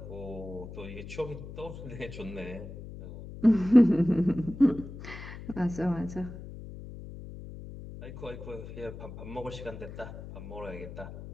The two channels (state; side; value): noise; left; hum, 12 dB below the sound